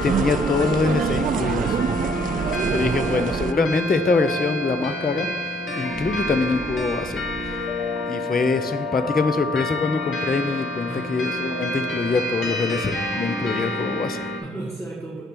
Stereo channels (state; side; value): normal; both; correlation 0.64